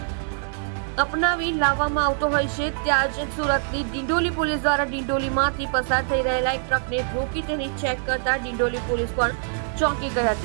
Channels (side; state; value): left; silent; 63 dB below the other